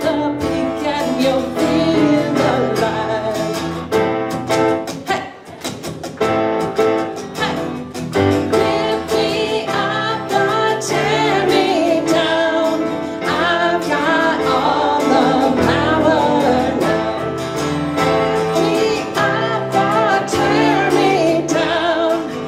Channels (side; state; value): both; identical; correlation 1.00